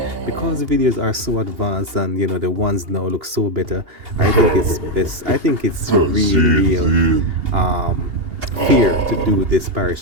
because the videos are so advanced and the ones now look so better, I think it's best. I think it's real fair to do this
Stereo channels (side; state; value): left; late; 2.8 ms